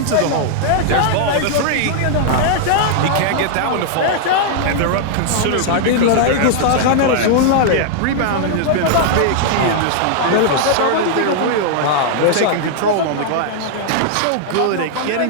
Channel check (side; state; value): both; different; correlation -0.01